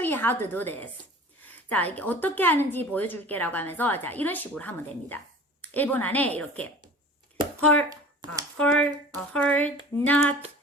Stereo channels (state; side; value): normal; both; correlation 0.42